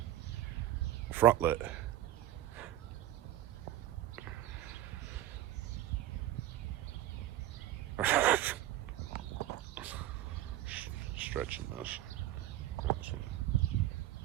Front lit. Stretching this.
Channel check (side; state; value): left; quieter; 13.8 dB